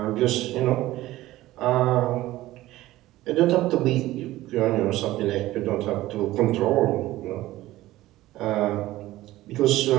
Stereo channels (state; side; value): quieter; left; 16.4 dB